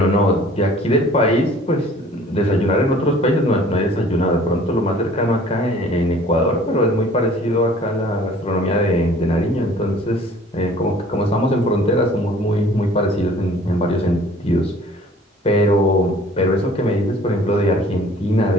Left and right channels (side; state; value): both; normal; correlation 0.52